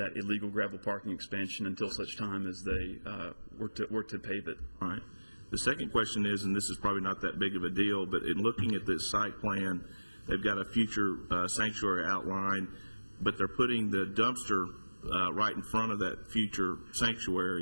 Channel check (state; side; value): inverted; both; correlation -1.00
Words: illegal gravel parking expansion until such time as they were to pave it. All right. The second question is, and this is probably not that big of a deal, but in looking at this site plan, they've got a future sanctuary outline, but they're putting the dumpster right in front of that future